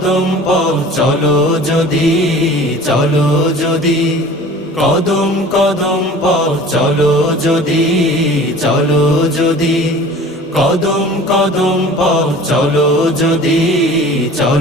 পথ চলো যদি, চলো যদি। কদম কদম পথ চলো যদি, চলো যদি। কদম কদম পথ চলো যদি,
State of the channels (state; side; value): normal; both; correlation 0.43